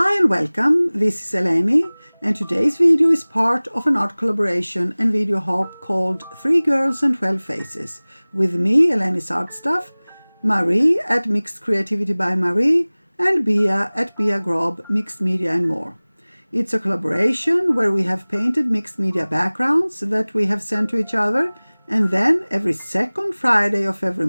and welcome, this is Eleni, and today's video is part of an art collaboration and video hop called 3 Girls and 12 Faces, with me, elenisartstuff, Marie at Mixed Creativity by Marie, and Bia at Bia Grob, Mixed Media and More. It's a collaboration where we have painted mixed media backgrounds that we have sent to each other, and then every second Friday of every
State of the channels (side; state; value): both; inverted; correlation -1.00